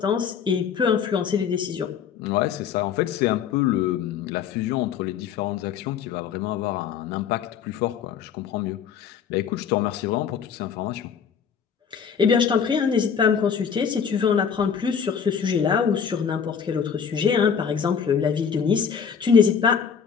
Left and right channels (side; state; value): right; quieter; 7.2 dB